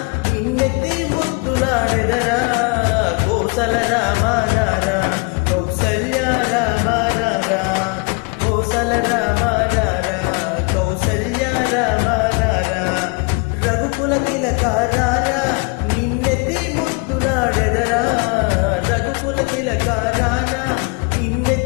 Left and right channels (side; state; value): right; quieter; 31.9 dB